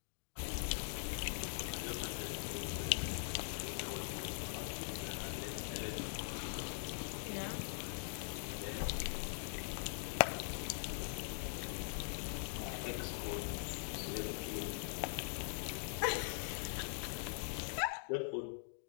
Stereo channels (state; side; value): silent; right; digital silence